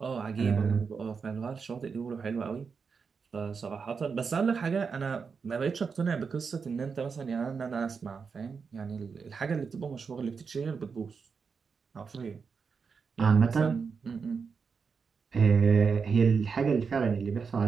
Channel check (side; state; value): left; quieter; 5.6 dB